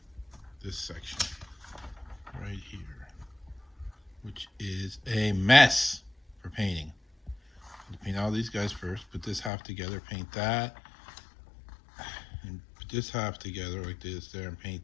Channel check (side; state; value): right; drops out; at 9.5 s